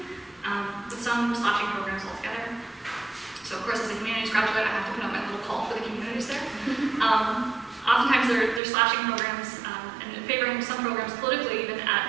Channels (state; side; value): drops out; left; at 8.6 s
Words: with some slashing programs altogether. So of course, as a humanities graduate, I have to put out my little call for the communities there. Oftentimes they're slashing programs and favoring some programs politically even